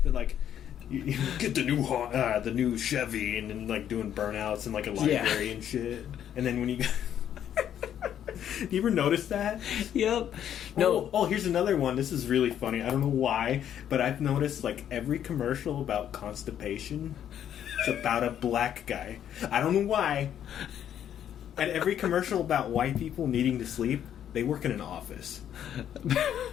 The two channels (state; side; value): quieter; right; 10.0 dB